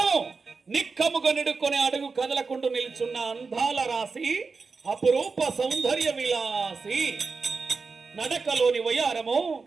నిక్కముగా నిడుకొని అడుగు కదలకుంటూ నిల్చున్న అందాల రాసి అపురూప సౌందర్య విలాసి నడకలోని వయారము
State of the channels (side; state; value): left; quieter; 4.6 dB